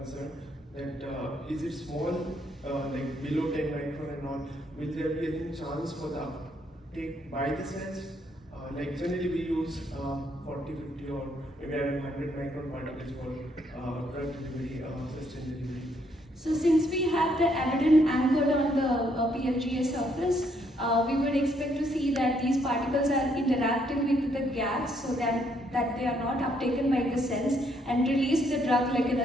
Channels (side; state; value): both; normal; correlation 0.71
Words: that is it small, like below 10 micron and all, will there be any chance for the uptake by the cells? Like generally we use 40, 50 or maybe around 100 micron particles for drug delivery, sustained delivery. So since we have the abaddon anchored on the PLGA surface, we would expect to see that these particles are interacting with the gas so that they are not uptaken by the cells and release the drug like in